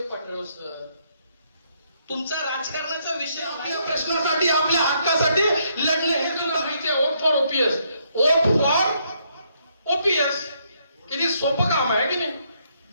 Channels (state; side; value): inverted; both; correlation -0.73